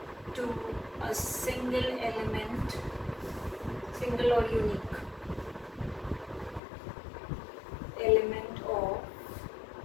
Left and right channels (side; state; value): right; drops out; at 6.6 s